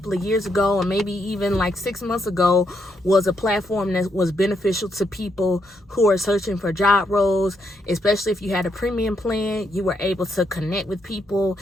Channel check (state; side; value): normal; both; correlation 0.78